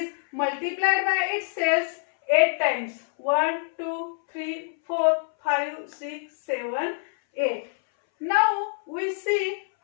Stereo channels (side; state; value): right; silent; 61 dB below the other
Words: multiplied by itself 8 times. 1, 2, 3, 4, 5, 6, 7, 8. Now we see